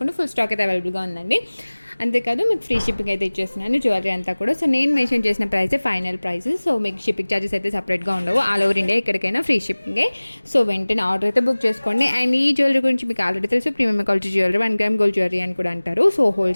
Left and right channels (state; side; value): inverted; both; correlation -1.00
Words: ఫుల్ స్టాక్ అయితే అవైలబుల్గా ఉందండి. అంతేకాదు మీకు ఫ్రీ షిప్పింగ్ అయితే ఇచ్చేస్తున్నాను జ్యువెలరీ అంతా కూడా. సో నేను మెన్షన్ చేసిన ప్రైసే ఫైనల్ ప్రైస్. సో మీకు షిప్పింగ్ ఛార్జెస్ అయితే సపరేట్గా ఉండవు. ఆల్ ఓవర్ ఇండియా ఎక్కడికైనా ఫ్రీ షిప్పింగే. సో వెంటనే ఆర్డర్ అయితే బుక్ చేసుకోండి. అండ్ ఈ జ్యువెలరీ గురించి మీకు ఆల్రెడీ తెలుసు, premium quality jewellery, 1 gram gold jewellery అని కూడా అంటారు. సో